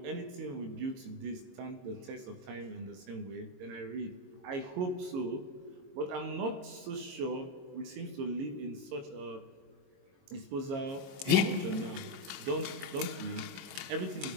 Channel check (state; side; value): late; left; 22 ms